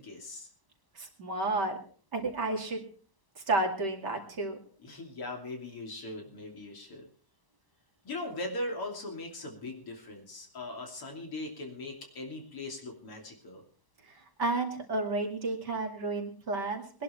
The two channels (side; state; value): right; late; 1.0 ms